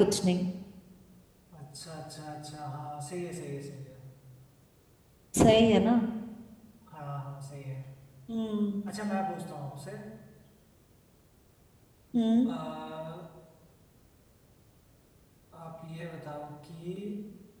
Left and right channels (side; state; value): both; identical; correlation 1.00